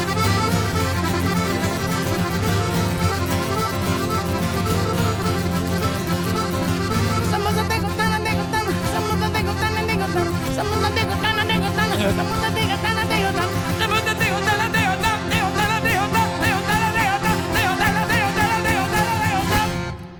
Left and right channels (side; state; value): both; identical; correlation 1.00